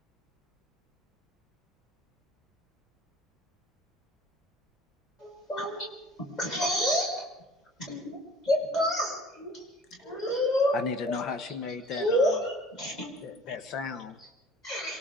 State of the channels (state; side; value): normal; both; correlation 0.48